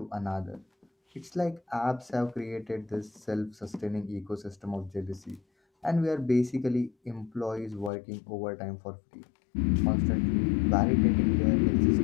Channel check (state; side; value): drops out; right; at 7.9 s